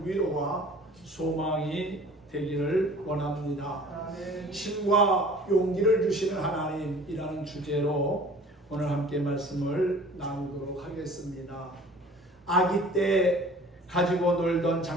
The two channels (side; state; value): both; normal; correlation 0.47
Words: 위로와 소망이 되기를 원합니다. 힘과 용기를 주시는 하나님이라는 주제로 오늘 함께 말씀을 나누도록 하겠습니다. 아기 때 가지고 놀던